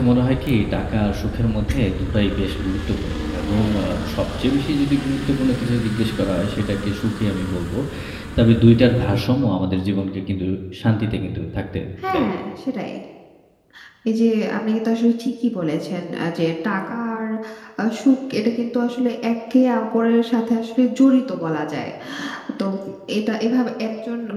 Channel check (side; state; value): both; identical; correlation 1.00